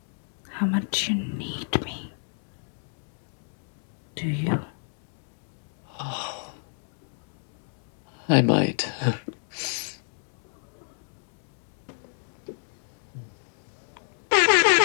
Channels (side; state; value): right; silent; digital silence